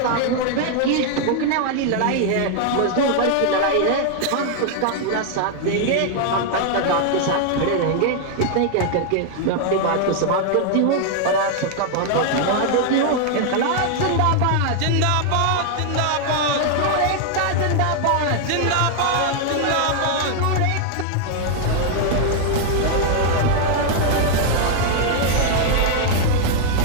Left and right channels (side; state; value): both; different; correlation 0.00